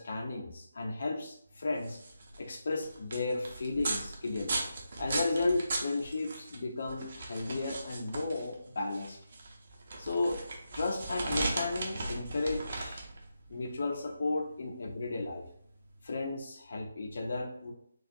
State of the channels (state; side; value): inverted; both; correlation -0.87